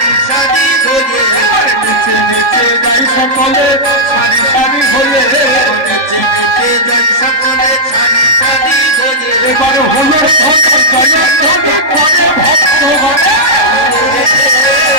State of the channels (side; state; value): left; late; 3.4 ms